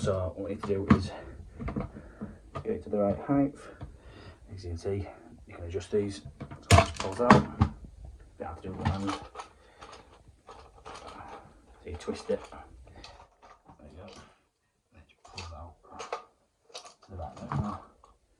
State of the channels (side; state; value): both; identical; correlation 1.00